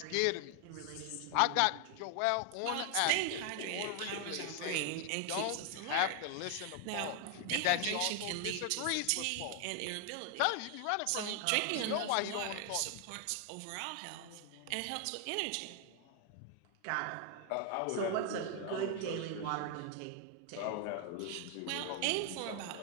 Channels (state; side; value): different; both; correlation 0.00